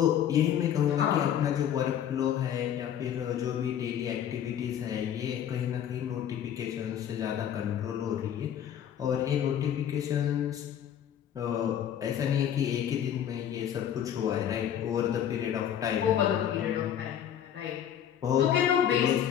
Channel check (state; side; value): quieter; right; 9.7 dB